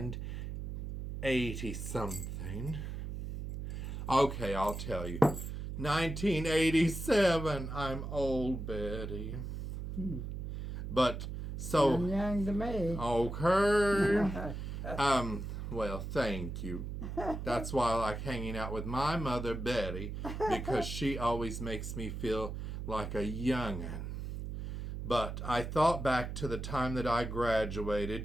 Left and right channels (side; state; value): right; noise; hum, 6 dB below the sound